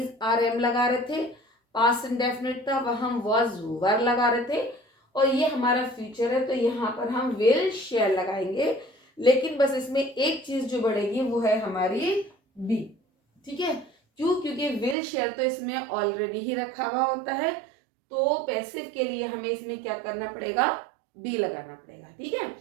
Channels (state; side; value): drops out; left; at 15.0 s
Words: आर एम लगा रहे थे, पास्ट इंडेफिनिट था वहां हम वाज वर लगा रहे थे, और ये हमारा फ्यूचर है तो यहाँ पर हम विल शैल लगाएंगे। लेकिन बस इसमें एक चीज जो बढ़ेगी वो है हमारी बी। ठीक है, क्यों, क्योंकि विल शैल तो इसमें ऑलरेडी ही रखा हुआ होता है, तो पैसिव के लिए हमें इसमें क्या करना पड़ेगा, बी लगाना पड़ेगा। ठीक है,